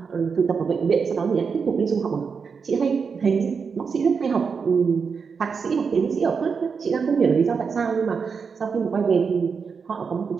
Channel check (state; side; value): quieter; left; 5.7 dB